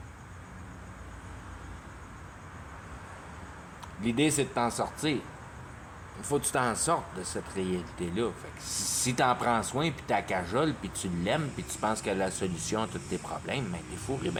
L'idée, c'est de t'en sortir. Il faut que tu t'en sortes de cette réalité-là. Fait que si t'en prends soin, puis t'as cajole, puis tu l'aimes, puis tu penses que la solution à tous tes problèmes, ben t'es fou et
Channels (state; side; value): identical; both; correlation 1.00